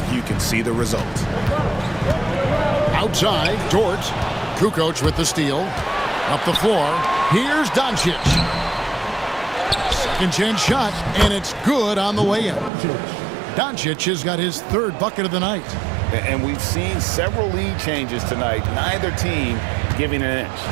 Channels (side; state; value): left; drops out; at 12.7 s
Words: you can see the result. Outside, Dort. Kukoc with the steal. Up the floor. Here's Doncic. Second chance shot, and it's good on the way in. Doncic has got his third bucket of the night. And we've seen several lead changes tonight. Neither team giving an inch.